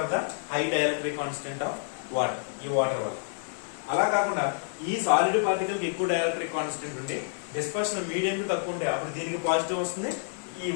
the high dielectric constant of water, ఈ వాటర్ వల్ల. అలా కాకుండా ఈ సాలిడ్ పార్టికల్ కి ఎక్కువ డైఎలక్ట్రిక్ కాన్స్టెంట్ ఉండి డిస్పర్షన్ మీడియం కి తక్కువ ఉంటే అప్పుడు దీనికి పాజిటివ్ వస్తుంది, ఈ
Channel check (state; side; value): silent; right; digital silence